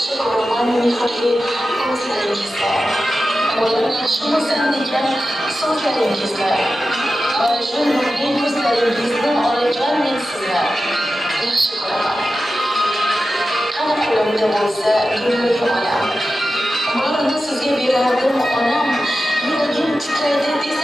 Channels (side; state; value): both; normal; correlation 0.93